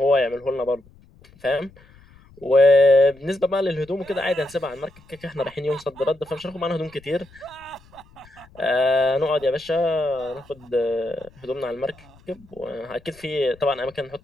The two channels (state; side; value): noise; left; rumble, 26 dB below the sound